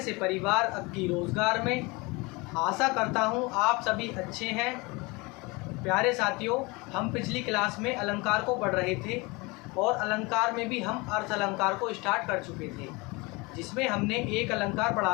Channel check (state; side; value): quieter; right; 25.6 dB